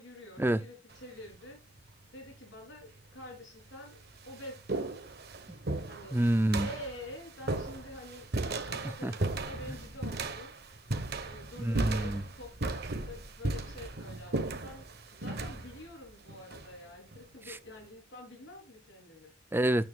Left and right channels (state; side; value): normal; both; correlation 0.71